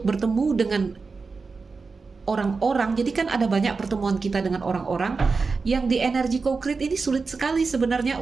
bertemu dengan orang-orang, jadi kan ada banyak pertemuan kita dengan orang-orang yang di energi co-create ini sulit sekali sebenarnya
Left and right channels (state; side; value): quieter; left; 4.5 dB